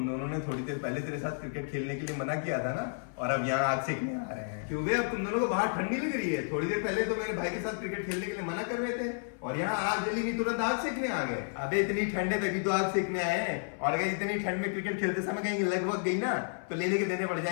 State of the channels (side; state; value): right; silent; 57 dB below the other